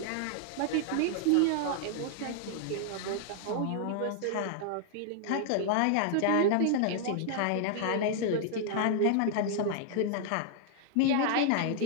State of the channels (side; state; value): both; different; correlation -0.01